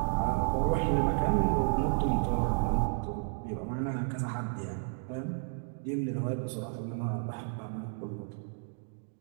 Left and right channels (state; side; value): silent; left; digital silence